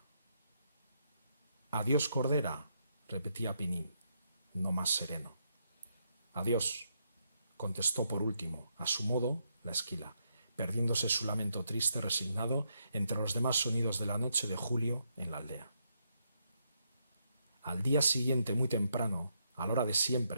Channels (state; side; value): inverted; both; correlation -0.79